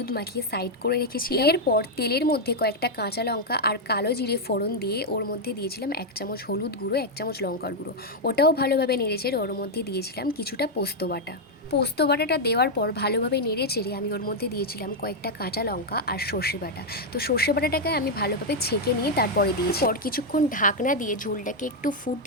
মাখিয়ে সাইড করে রেখেছি। এরপর তেলের মধ্যে কয়েকটা কাঁচা লঙ্কা আর কালো জিরে ফোড়ন দিয়ে ওর মধ্যে দিয়েছিলাম 1 চামচ হলুদ গুঁড়ো, 1 চামচ লঙ্কার গুঁড়ো। ওটাও ভালোভাবে নেড়েচেড়ে ওর মধ্যে দিয়েছিলাম কিছুটা পোস্ত বাটা। পোস্ত বাটাটা দেওয়ার পর ভালোভাবে নেড়ে চেড়ে আমি ওর মধ্যে দিয়েছিলাম কয়েকটা কাঁচা লঙ্কা আর সর্ষে বাটা। তো সর্ষে বাটাটাকে আমি ভালোভাবে ছেঁকে নিয়ে তারপরে দিয়েছি। পর কিছুক্ষণ ঢাকনা দিয়ে ঝোলটাকে একটু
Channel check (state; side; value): normal; both; correlation 0.00